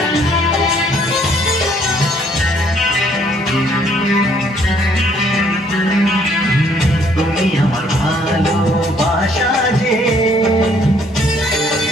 তুমি আমার ভালোবাসা যে,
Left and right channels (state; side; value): normal; both; correlation 0.64